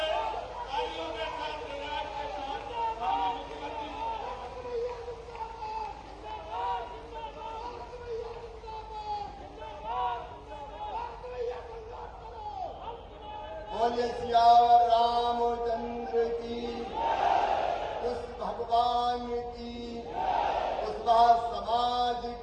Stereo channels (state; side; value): identical; both; correlation 1.00